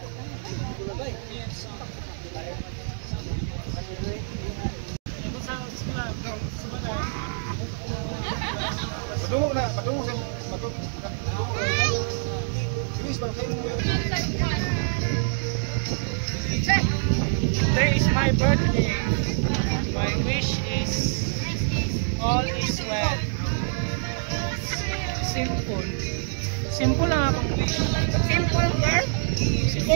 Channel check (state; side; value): silent; left; digital silence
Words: Padungog na, padungog sa Today is my birthday. My wish is all is well. Simple. Simple lang akong wish. Simple girl?